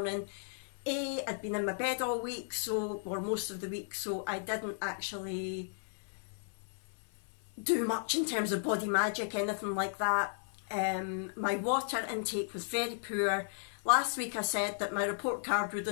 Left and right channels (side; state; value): right; silent; 55 dB below the other